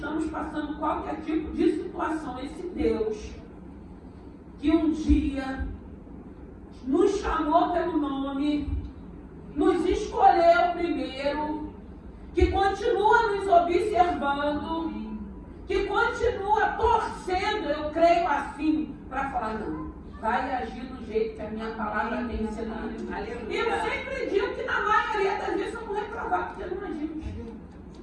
passando qualquer tipo de situação, esse Deus que um dia nos chamou pelo nome, nos escolheu primeiro, que continua nos observando, que continua torcendo, eu creio assim, para falar, não, vai agir do jeito que a minha palavra tem ensinado. E eu sempre digo que na maioria das vezes eu vou reprovar, porque não agimos.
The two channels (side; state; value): both; identical; correlation 1.00